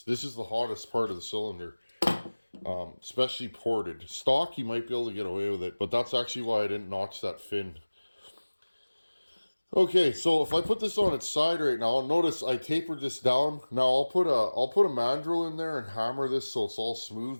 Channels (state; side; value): inverted; both; correlation -1.00